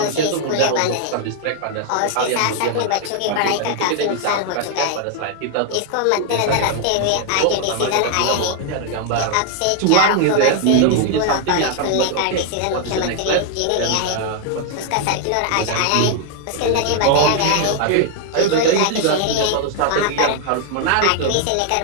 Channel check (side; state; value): both; different; correlation 0.00